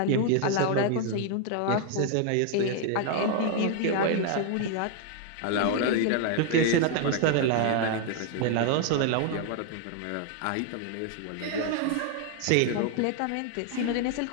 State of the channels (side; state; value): both; different; correlation 0.00